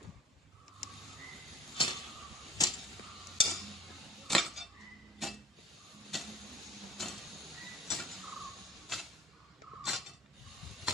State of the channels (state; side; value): normal; both; correlation 0.49